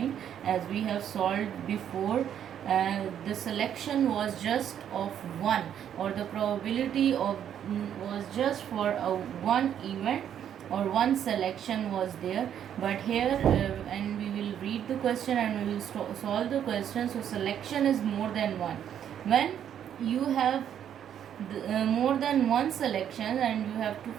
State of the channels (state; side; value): quieter; left; 9.5 dB